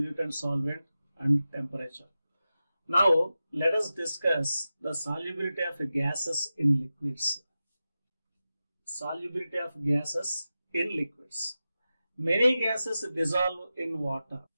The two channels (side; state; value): both; inverted; correlation -0.93